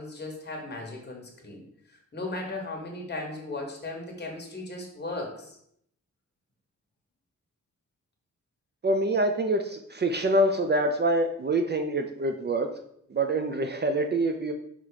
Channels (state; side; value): normal; both; correlation 0.20